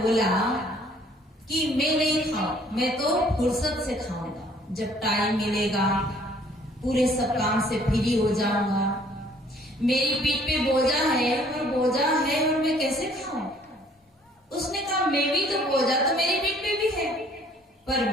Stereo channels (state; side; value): normal; both; correlation 0.59